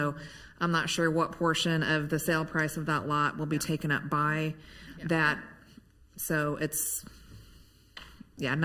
I'm not sure what portion of the sale price of that lot will be taken up by that. So it's,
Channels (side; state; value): both; identical; correlation 1.00